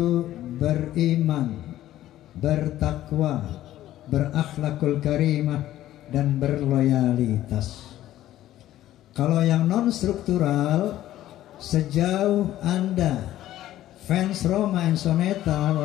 beriman, bertakwa, berakhlakul karimah, dan berloyalitas. Kalau yang non struktural, sejauh Anda fans Rhoma and Soneta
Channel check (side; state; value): right; quieter; 13.7 dB